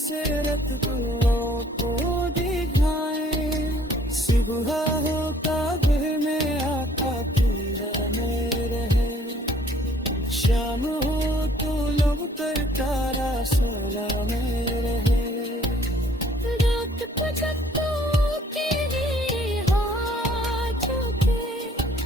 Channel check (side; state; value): both; normal; correlation 0.59